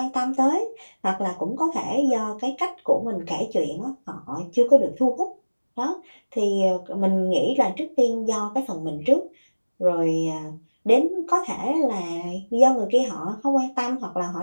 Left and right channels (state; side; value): inverted; both; correlation -1.00